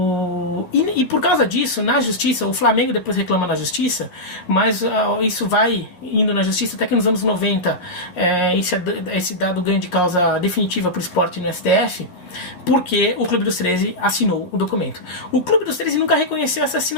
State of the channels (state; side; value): late; right; 11 ms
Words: E por causa disso, na justiça, o Flamengo depois reclama na justiça, mas isso vai indo na justiça até que nos anos 90 esse dado ganho de causa definitiva para o Sport no STF, porque o Clube dos 13 assinou o documento. O Clube dos 13 nunca reconheceu essa